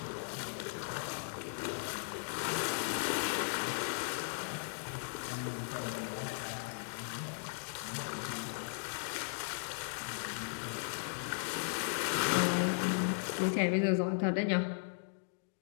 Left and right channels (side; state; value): right; silent; digital silence